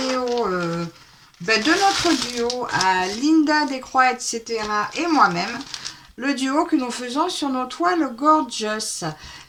de notre duo à Linda Descroix, etc. et moi-même, le duo que nous faisons sur nos toiles Gorgeous.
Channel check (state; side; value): identical; both; correlation 1.00